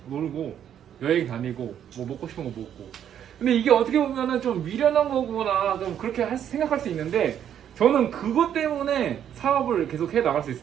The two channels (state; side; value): quieter; left; 9.6 dB